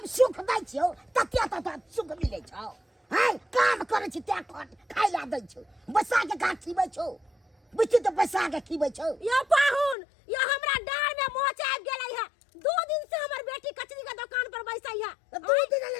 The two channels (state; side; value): drops out; right; at 10.0 s